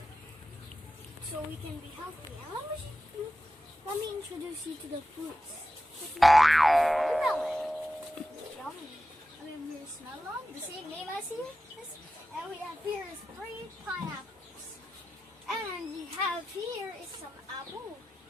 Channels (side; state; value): both; normal; correlation 0.92